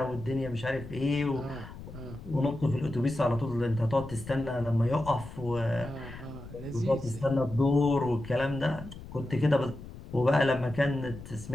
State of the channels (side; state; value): left; noise; rumble, 14 dB below the sound